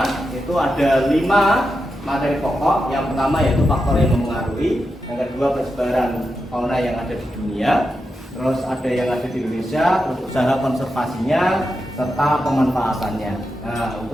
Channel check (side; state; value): both; normal; correlation 0.88